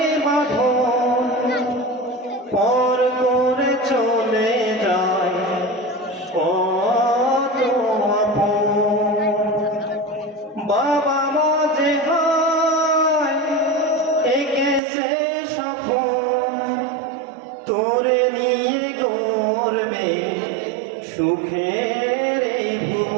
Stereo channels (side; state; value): left; drops out; at 14.8 s